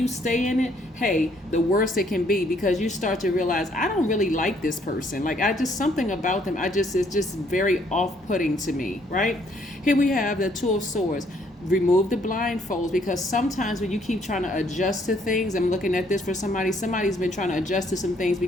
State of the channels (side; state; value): both; normal; correlation 0.66